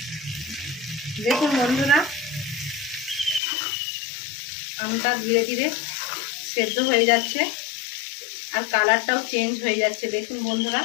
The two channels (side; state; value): right; drops out; at 3.4 s